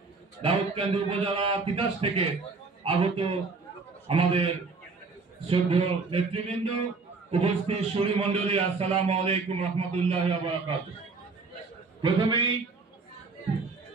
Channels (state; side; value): quieter; left; 4.2 dB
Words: দাউদকান্দি উপজেলা তিতাস থেকে আগত আমাদের শ্রদ্ধেয় নেতৃবৃন্দ, উপস্থিত সুরী মন্ডলী, আসসালামু আলাইকুম রহমতুল্লাহি ওয়া বারাকাতুহু। প্রথমেই